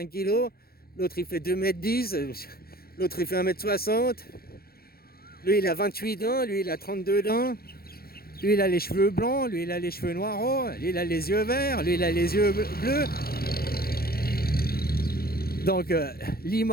kg, l'autre il fait 2m10, l'autre il fait 1m60, lui il a 28 ans, lui il a 32 ans, lui il a les cheveux blancs, lui il a les cheveux noirs, lui il a les yeux verts, lui il a les yeux bleus. Donc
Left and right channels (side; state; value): right; late; 0.44 ms